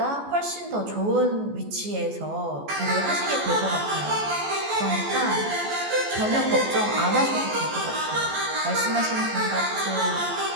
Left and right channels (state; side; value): late; left; 14 ms